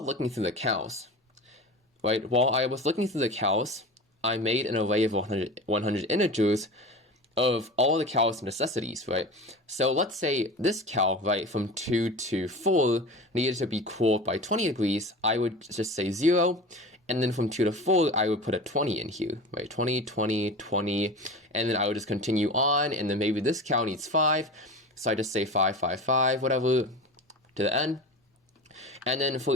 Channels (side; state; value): both; normal; correlation 0.32